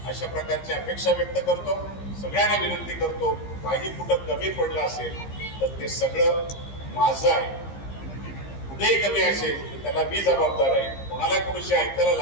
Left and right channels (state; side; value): late; right; 15 ms